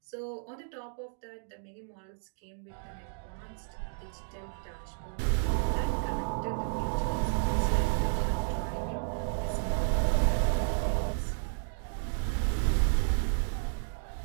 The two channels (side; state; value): left; silent; digital silence